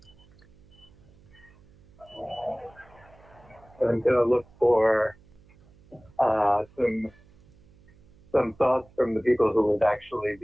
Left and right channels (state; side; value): noise; right; hum, 27 dB below the sound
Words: I'm going to look for some thoughts from the people who would actually